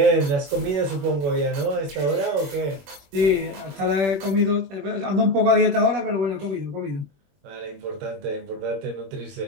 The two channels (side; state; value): left; late; 21 ms